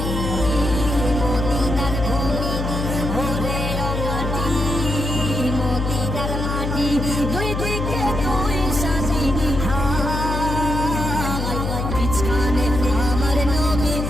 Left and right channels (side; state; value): left; noise; hum, 2 dB below the sound